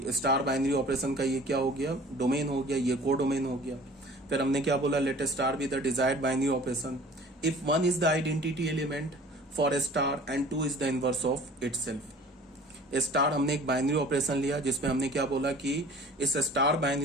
star binary operation का ये क्या हो गया, डोमेन हो गया, ये को डोमेन हो गया। फिर हमने क्या बोला, let star be the desired binary operation if 1 is the identity element for A star and 2 is the inverse of itself. Star हमने एक बाइनरी ऑपरेशन लिया जिसमें हमने क्या बोला कि इस स्टार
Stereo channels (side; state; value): both; normal; correlation 0.47